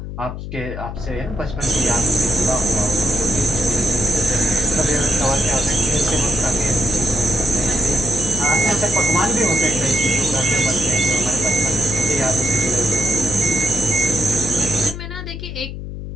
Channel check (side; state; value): left; noise; hum, 8 dB below the sound